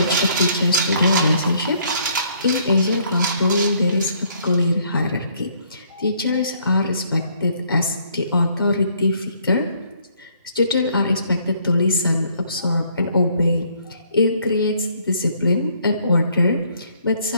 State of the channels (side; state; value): both; inverted; correlation -0.65